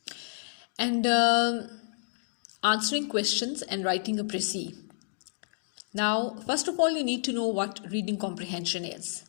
and answering questions and writing a précis. Now, first of all, you need to know what reading comprehension is.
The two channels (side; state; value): right; silent; digital silence